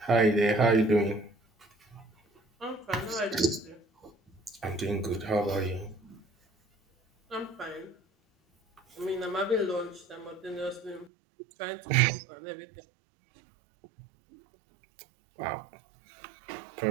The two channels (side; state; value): left; drops out; at 11.1 s